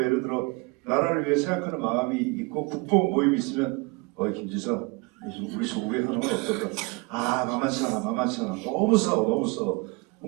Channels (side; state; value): left; quieter; 27.5 dB